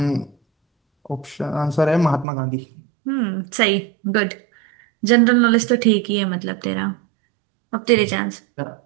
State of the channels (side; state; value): left; drops out; at 2.2 s